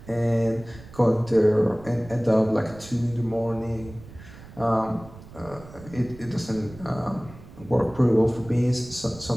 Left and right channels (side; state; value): right; noise; rumble, 18 dB below the sound